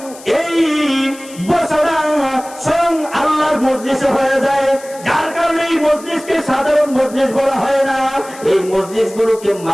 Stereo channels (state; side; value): noise; left; hiss, 19 dB below the sound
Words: এই বছরা স্বয়ং আল্লাহর মজলিসে হয়ে যায়, যার কারণে এই মজলিসকে সাধারণ মজলিস বলা হয় না, এই মজলিস গুলোকে